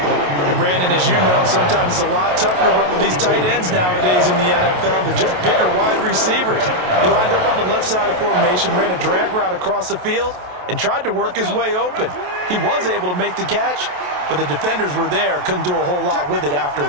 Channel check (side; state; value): left; late; 28 ms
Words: And Brandon, as you know, sometimes it's a lot tougher to run with these tight ends nowadays in the NFL. They're just bigger wide receivers. He lined up on the left side of the formation, ran a drag route across the field, and tried to work his way open. He was able to make the catch, but the defenders were there, couldn't do a whole lot with it